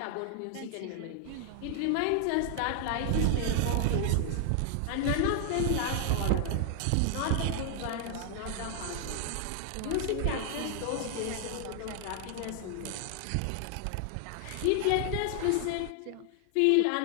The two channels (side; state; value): both; different; correlation 0.00